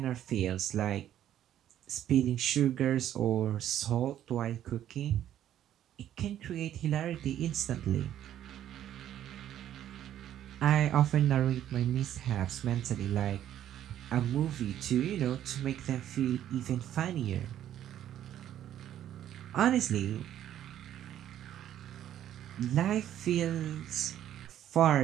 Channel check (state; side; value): quieter; left; 11.3 dB